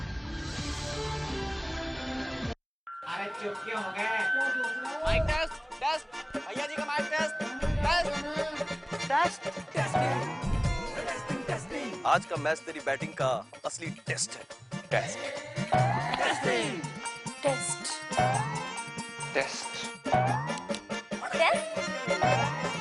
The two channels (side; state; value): both; identical; correlation 1.00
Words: अरे चुप क्यों हो गए? माइक टेस्ट टेस्ट भैया जी का माइक टेस्ट टेस्ट। आज का मैच तेरी बैटिंग का असली टेस्ट है। टेस्ट टेस्टिंग टेस्ट टेस्ट